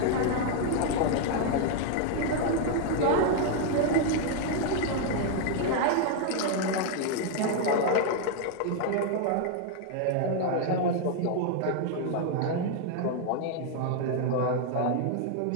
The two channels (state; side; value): different; both; correlation 0.00